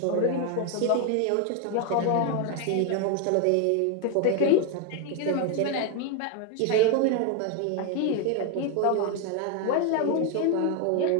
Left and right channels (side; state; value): both; different; correlation 0.01